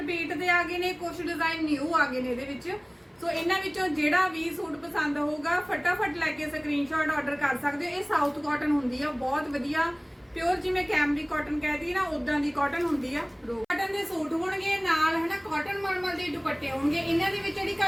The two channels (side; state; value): both; identical; correlation 1.00